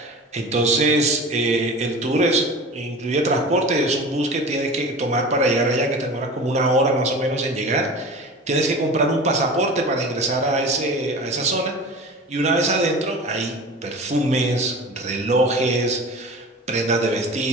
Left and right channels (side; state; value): both; normal; correlation 0.35